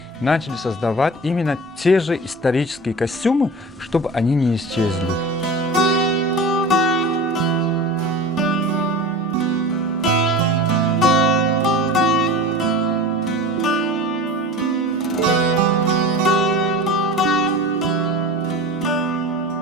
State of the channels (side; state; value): both; normal; correlation 0.34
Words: начали создавать именно те же исторические костюмы, чтобы они не исчезли.